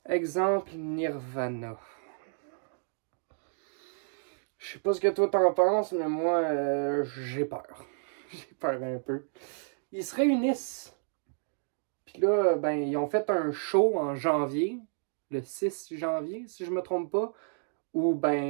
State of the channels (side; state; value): left; silent; digital silence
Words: Exemple, Nirvana. Je sais pas ce que toi t'en penses, mais moi, j'ai peur. J'ai peur un peu. Ils se réunissent. Puis là, ben, ils ont fait un show en janvier, le 6 janvier, si je me trompe pas, où,